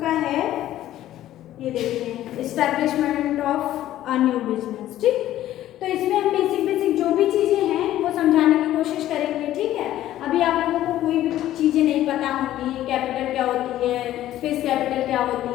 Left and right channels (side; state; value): right; quieter; 13.4 dB